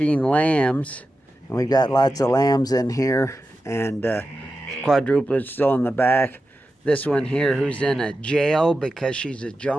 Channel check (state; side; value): normal; both; correlation 0.91